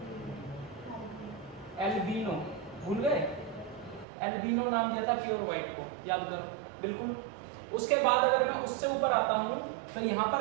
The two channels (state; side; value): drops out; left; at 4.0 s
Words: एल्बिनो, भूल गए? एल्बिनो नाम दिया था प्योर व्हाइट को, याद करो बिल्कुल। उसके बाद अगर मैं उससे ऊपर आता हूं तो यहां